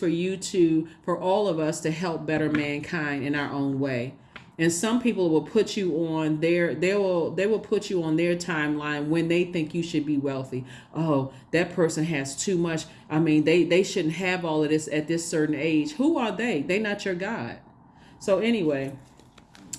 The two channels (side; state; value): both; identical; correlation 1.00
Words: all of us to help better mankind in our own way. And some people will put you on they will put you on their timeline when they think you should be wealthy. Oh, that person has too much. I mean, they shouldn't have all of this at this certain age. Who are they? They're not your God. So anyway,